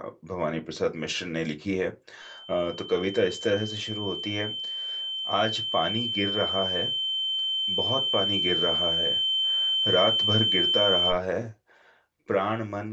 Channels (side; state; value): both; identical; correlation 1.00